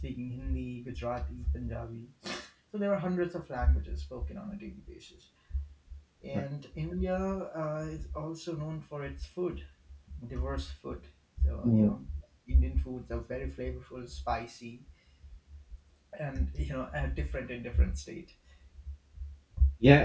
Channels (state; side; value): identical; both; correlation 1.00